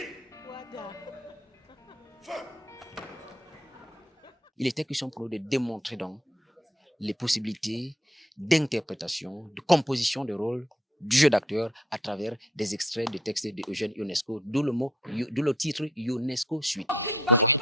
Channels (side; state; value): both; normal; correlation 0.65